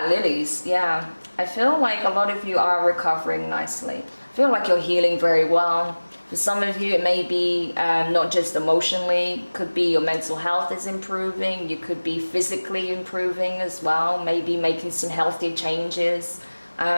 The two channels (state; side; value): inverted; both; correlation -1.00